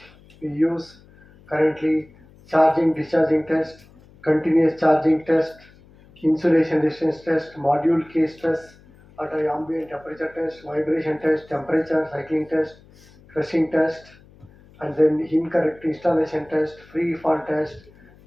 we use currently. Charging, discharging test, continuous charging test, insulation resistance test, module case test, at ambient temperature test, vibration test, temperature cycling test, crushing test, and then incorrect installation test, free fall test,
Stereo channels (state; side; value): noise; left; hum, 26 dB below the sound